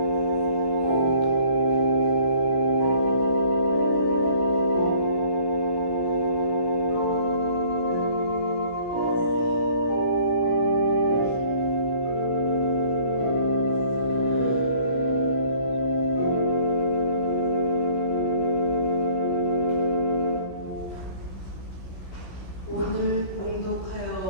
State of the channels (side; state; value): right; late; 16 ms